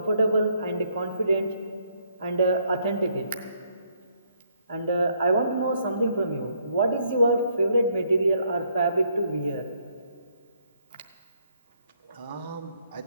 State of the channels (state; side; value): inverted; both; correlation -0.70